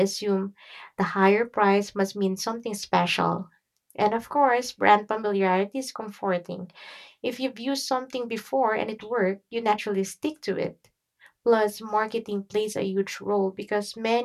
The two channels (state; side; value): identical; both; correlation 1.00